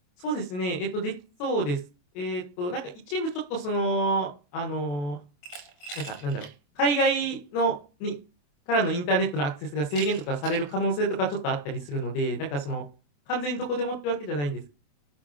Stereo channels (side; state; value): right; late; 28 ms